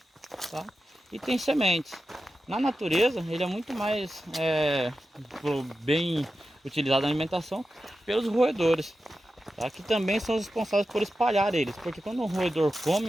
tá? E tem sementes. Na natureza ele é muito mais bem utilizado na alimentação pelos roedores, tá? Que também são os responsáveis por espalhar eles, porque quando um roedor come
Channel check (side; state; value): both; normal; correlation 0.92